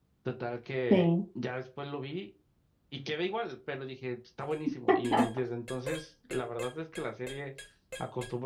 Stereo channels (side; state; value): both; identical; correlation 1.00